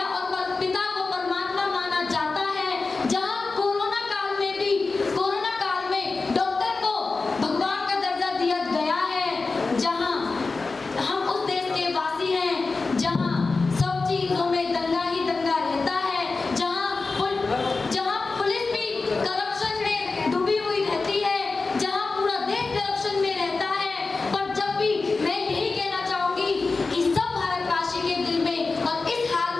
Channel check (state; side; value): quieter; right; 3.9 dB